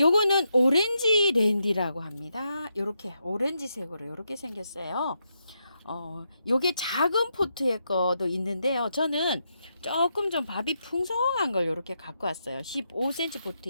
오렌지 랜디라고 합니다. 요렇게 오렌지색으로 요렇게 생겼어요. 요게 작은 포트의 거도 있는데요. 저는 조금 좀 밥이 풍성한 걸 요렇게 갖고 왔어요. 15cm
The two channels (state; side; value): inverted; both; correlation -0.82